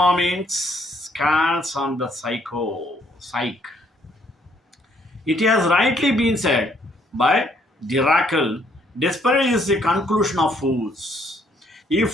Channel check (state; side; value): normal; both; correlation 0.67